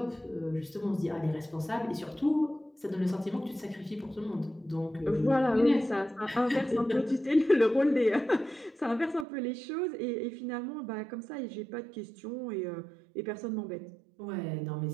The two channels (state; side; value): drops out; left; at 9.2 s